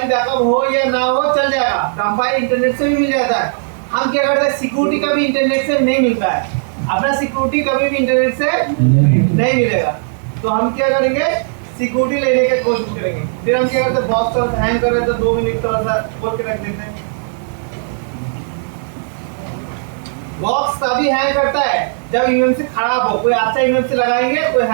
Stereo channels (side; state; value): left; silent; digital silence